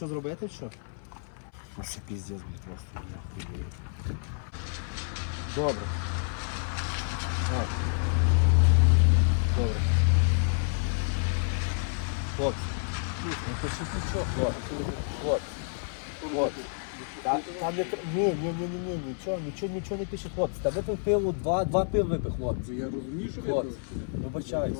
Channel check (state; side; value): silent; right; 58 dB below the other